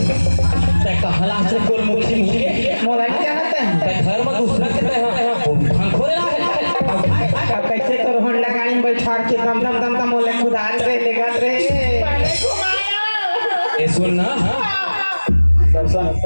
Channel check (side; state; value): both; inverted; correlation -1.00